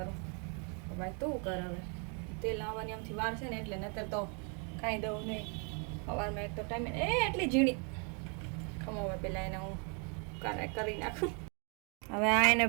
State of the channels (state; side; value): quieter; left; 37.0 dB